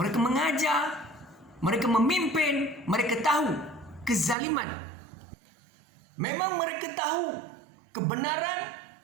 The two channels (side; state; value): left; drops out; at 4.4 s